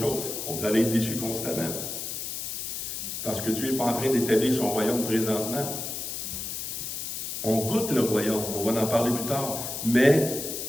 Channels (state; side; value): noise; left; hiss, 5 dB below the sound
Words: Vous allez être déçus constamment. Parce que Dieu n'est pas en train d'établir son royaume présentement. On goûte le royaume, on va en parler plus tard. Mais